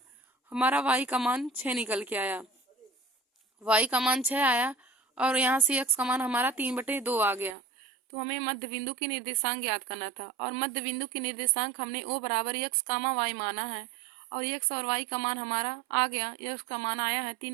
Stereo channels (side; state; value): left; drops out; at 7.6 s